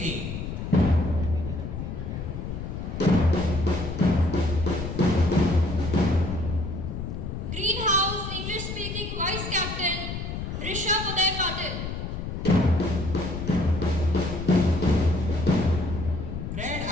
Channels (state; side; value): noise; left; rumble, 6 dB below the sound